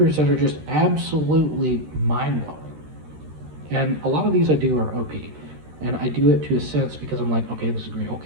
that are just absolutely mind blowing. And a lot of these I do are OP. And I do it to a sense because I'm like, okay, this is great,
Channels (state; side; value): late; left; 13 ms